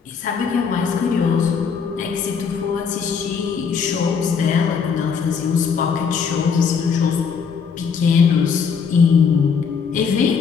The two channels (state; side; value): quieter; right; 6.2 dB